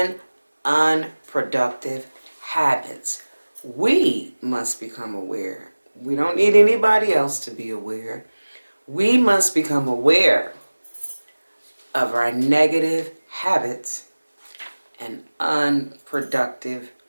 unproductive habits. We must become aware. We don't need anybody else to be aware. We must become aware of our negative habits and unproductive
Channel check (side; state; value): both; inverted; correlation -1.00